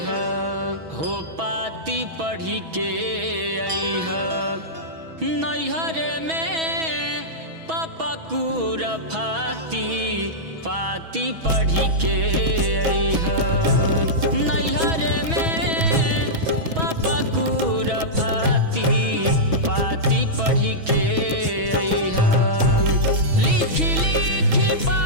हो, पाती पढ़ी के अइहा। नैहर में पापा कुरफाती पाती पढ़ी के अइहा। नैहर में पापा कुरफाती पाती पढ़ी के अइहा। लिखी लिखी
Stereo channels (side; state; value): left; late; 6.2 ms